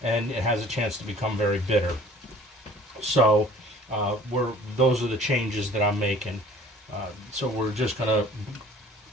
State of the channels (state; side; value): normal; both; correlation 0.50